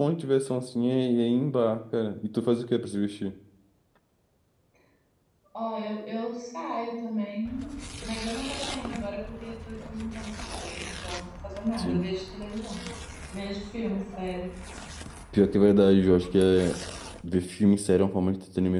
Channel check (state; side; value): identical; both; correlation 1.00